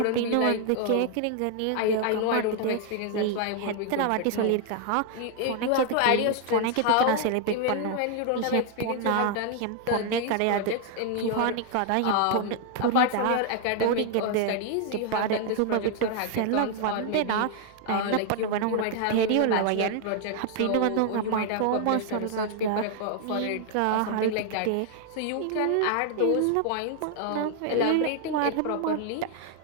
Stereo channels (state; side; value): different; both; correlation 0.00